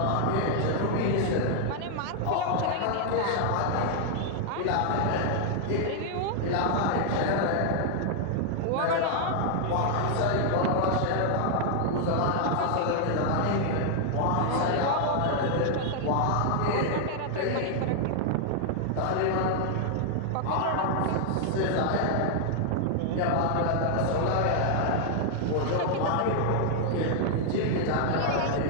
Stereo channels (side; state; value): both; different; correlation 0.00